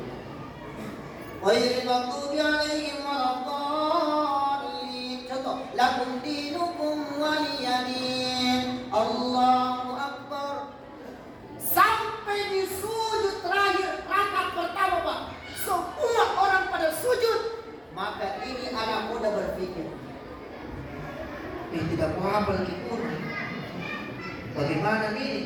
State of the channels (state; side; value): identical; both; correlation 1.00